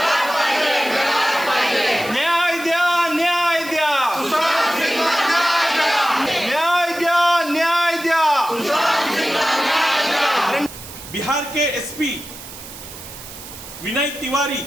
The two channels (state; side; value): noise; right; hiss, 14 dB below the sound